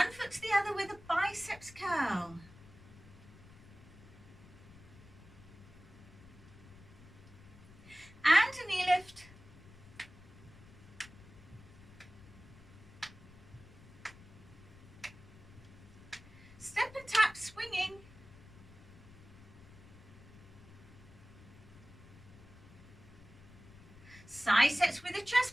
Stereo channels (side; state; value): left; noise; rumble, 20 dB below the sound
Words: foot to the other with a biceps curl. And a knee lift. Step and tap, swinging. Side sets with a